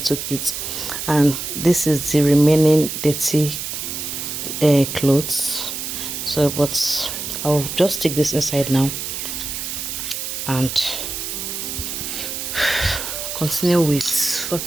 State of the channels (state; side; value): noise; right; hiss, 5 dB below the sound